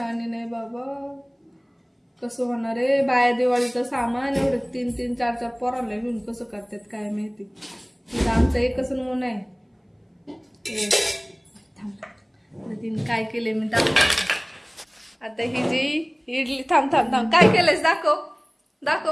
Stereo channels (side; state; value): both; identical; correlation 1.00